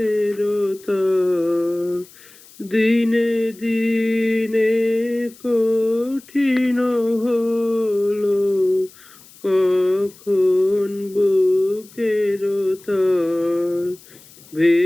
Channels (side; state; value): left; noise; hiss, 24 dB below the sound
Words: তার, দিনে দিনে কঠিন হলো কখন বুকের তার,